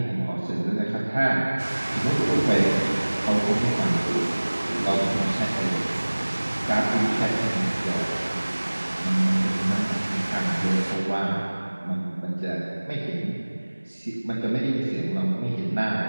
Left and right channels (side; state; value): both; inverted; correlation -1.00